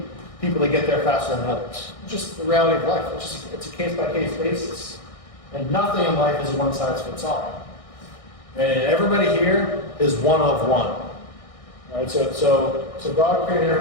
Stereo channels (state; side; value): late; right; 1.6 ms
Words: people that get there faster than others. It's just the reality of life. It's a case-by-case basis. And nothing in life is a one-size-fits-all. And everybody here is one of one. All right, so God created